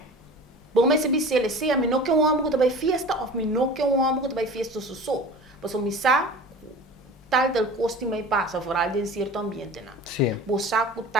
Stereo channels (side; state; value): both; normal; correlation 0.38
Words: Bom mas se bisele se a mim não que um homem que vai festa ou mim não que um homem que vai festa so. Mas o misa tal del costume mai passa, fora de certo ambiente não. Sim. Bo saco